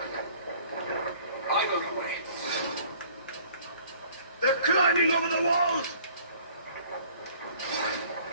They're climbing over the walls!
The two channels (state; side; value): inverted; both; correlation -0.54